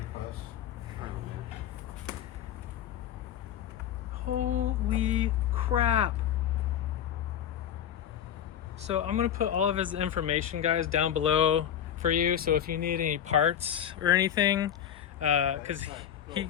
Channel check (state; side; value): quieter; right; 9.9 dB